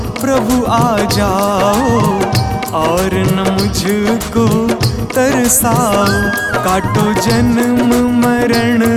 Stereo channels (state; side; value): identical; both; correlation 1.00